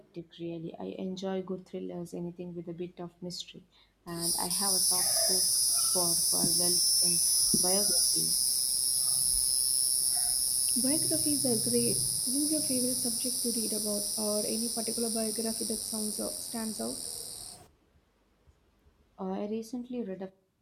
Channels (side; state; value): both; identical; correlation 1.00